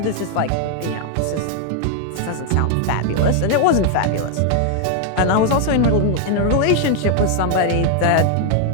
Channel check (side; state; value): both; different; correlation 0.00